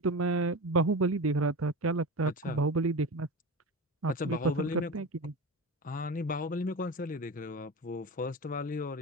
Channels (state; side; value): normal; both; correlation 0.26